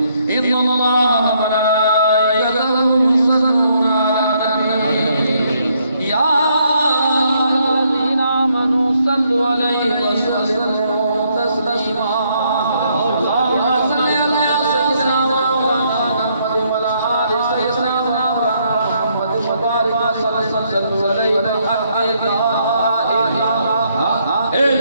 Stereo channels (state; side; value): inverted; both; correlation -0.72